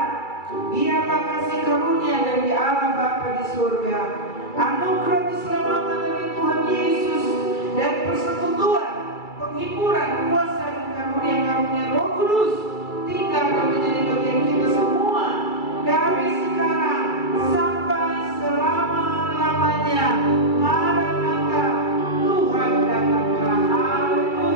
biarlah kasih karunia dari Allah Bapa di surga, anugerah keselamatan dari Tuhan Yesus, dan persekutuan, penghiburan, kuasa dan karunia-karunia Roh Kudus tinggal dan menjadi bagian kita semua dari sekarang sampai selama-lamanya. Maranatha, Tuhan datanglah.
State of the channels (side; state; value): right; late; 2.3 ms